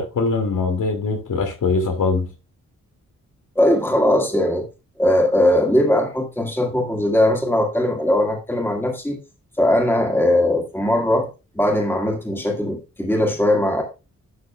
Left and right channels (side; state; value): both; normal; correlation 0.73